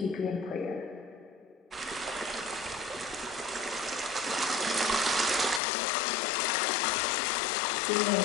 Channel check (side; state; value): right; drops out; at 5.6 s